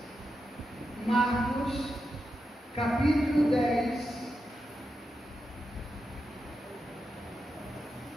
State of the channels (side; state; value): both; normal; correlation 0.88